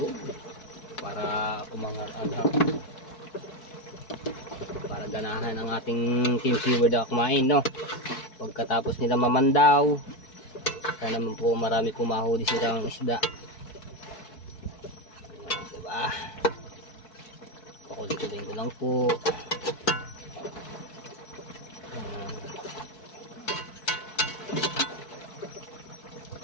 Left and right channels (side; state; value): right; late; 4.6 ms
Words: para umangat-anghang, para ganahan ang ating Team Seaward na kumain, no? Pagkatapos nila mamandaw, sana naman po marami pumahuli silang isda. Diba? Pakulitin ko lang po. Ayan.